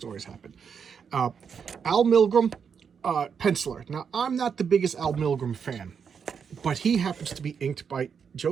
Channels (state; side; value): quieter; left; 6.7 dB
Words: happened. Al Milgrom, penciler. Now, I'm not the biggest Al Milgrom fan. but he happens to be inked by